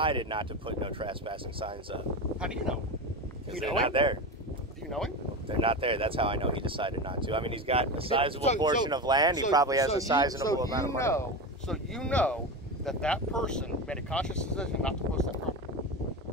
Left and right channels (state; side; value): normal; both; correlation 0.22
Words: not to put no trespassing signs up. How do you know? Because they're not there. Do you know him? They're not there. That's how I know he decided not to. I mean, he's got a sizable portion of land. He probably has a sizable amount of money. So you know that person made a conscious decision not to post that property.